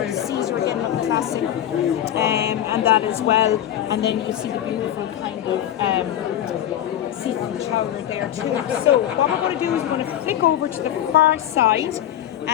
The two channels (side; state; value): right; quieter; 11.4 dB